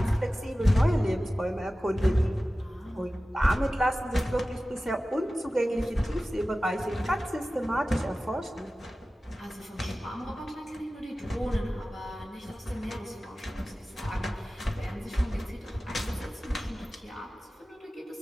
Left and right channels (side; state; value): both; normal; correlation 0.96